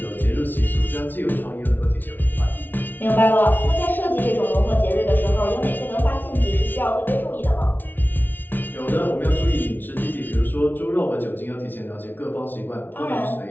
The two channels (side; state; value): right; late; 0.090 ms